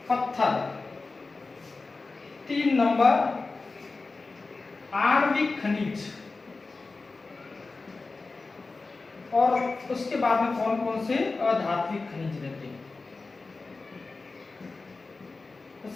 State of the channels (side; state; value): right; quieter; 3.8 dB